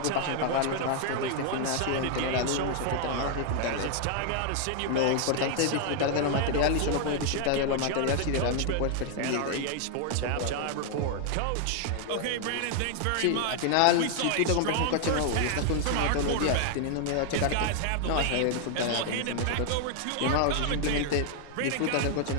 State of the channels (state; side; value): different; both; correlation 0.00